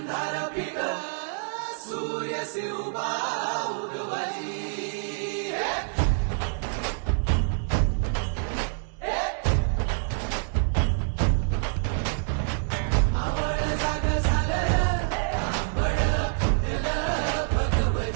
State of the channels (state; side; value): silent; left; 60 dB below the other